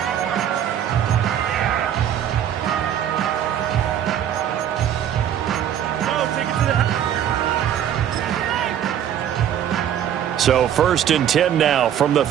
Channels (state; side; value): quieter; left; 10.0 dB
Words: So 1st and 10 now from the